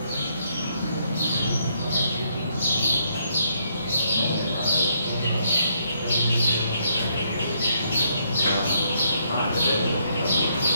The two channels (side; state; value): both; inverted; correlation -0.73